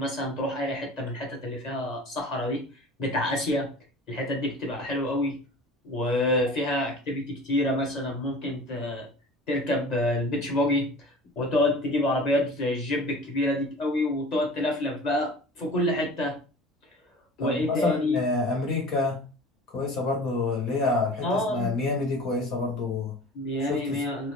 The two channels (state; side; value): normal; both; correlation 0.41